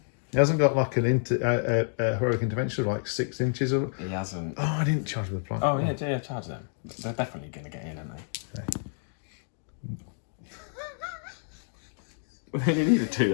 He hasn't got like an heroic intervention of like 6 inches or. He hasn't. Oh, I didn't charge with the plant. Oh yeah, charge them. They're definitely going to get in, aren't they? Okay. They only need 2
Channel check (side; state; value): right; silent; digital silence